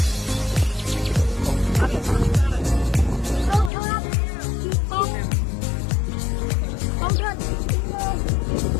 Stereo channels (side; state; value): right; drops out; at 3.7 s